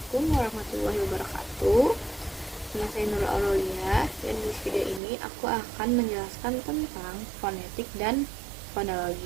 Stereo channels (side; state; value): left; drops out; at 5.0 s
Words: warahmatullahi wabarakatuh. Nama saya Nurul Aurelia, dan di video ini aku akan menjelaskan tentang fonetik dan